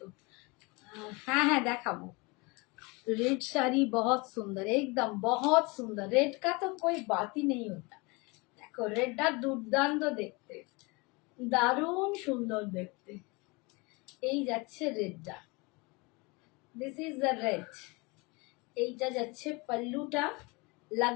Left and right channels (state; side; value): quieter; right; 26.9 dB